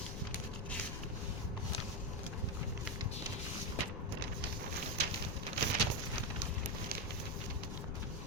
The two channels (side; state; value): left; noise; rumble, 4 dB below the sound